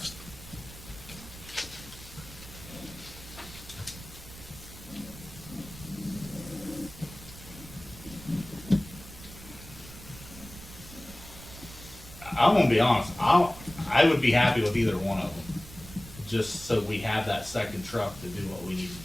I'm gonna be honest. I would be happy with either one of them, just so we have that second truck to do what we need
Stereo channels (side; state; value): right; noise; rumble, 16 dB below the sound